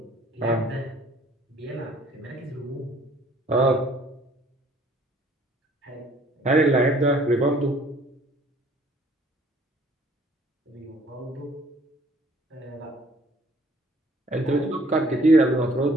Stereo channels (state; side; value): normal; both; correlation 0.58